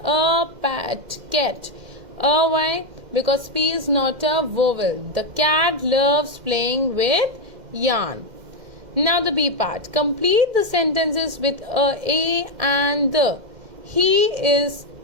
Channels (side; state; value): left; late; 2.1 ms